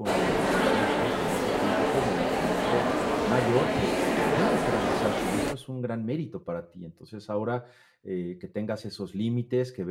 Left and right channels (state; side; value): identical; both; correlation 1.00